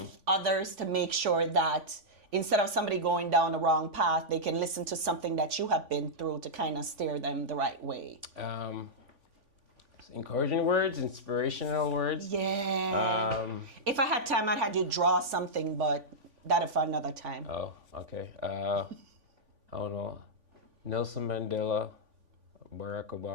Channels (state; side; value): late; left; 3.5 ms